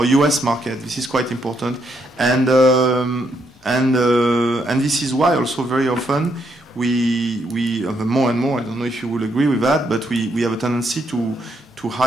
US market. This is quite important, and this is why also very often we more and more, I don't know if you will agree with that, but we have a tendency to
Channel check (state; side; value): normal; both; correlation 0.76